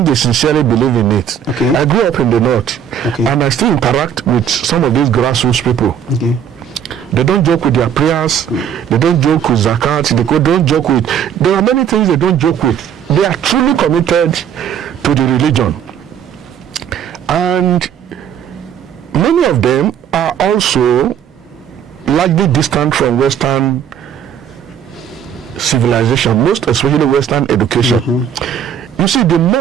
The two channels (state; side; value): quieter; left; 8.6 dB